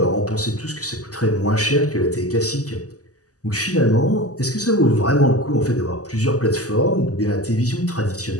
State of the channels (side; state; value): right; late; 0.67 ms